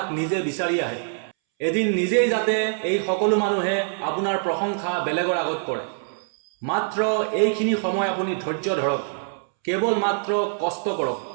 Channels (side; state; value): left; silent; 63 dB below the other